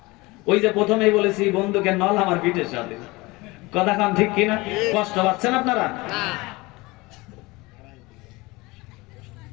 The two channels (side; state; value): right; quieter; 22.8 dB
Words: ওই যে প্রথমেই বলেছি বন্ধুকে নল আমার পিঠের সাথে। কথা কম ঠিক কি না? কষ্ট পাচ্ছেন আপনারা?